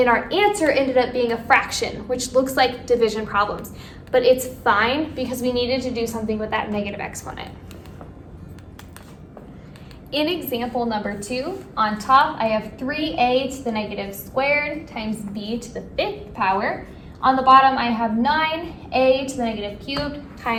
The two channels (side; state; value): both; identical; correlation 1.00